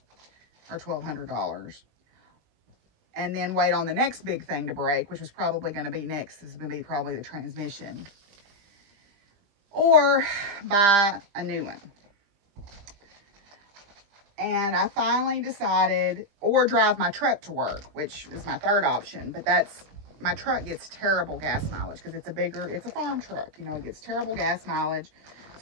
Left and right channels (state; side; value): late; left; 20 ms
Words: or $1,200, and then wait on the next big thing to break, which was probably going to be next. This is going to be probably the transmission, or buy a new one. And I finally decided, or drive my truck to work, which is my third option. But my truck gets terrible gas mileage because it's a farm truck. You know, it gets terrible gas mileage.